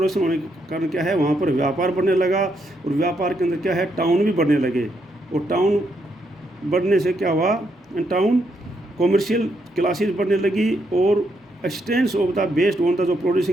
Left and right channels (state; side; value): normal; both; correlation 0.77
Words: होने के कारण क्या है वहाँ पर व्यापार बढ़ने लगा। और व्यापार के अंदर क्या है, टाउन भी बढ़ने लगे। और टाउन बढ़ने से क्या हुआ, टाउन कॉमर्शियल क्लासेस बढ़ने लगी और expanse of the based on the, जो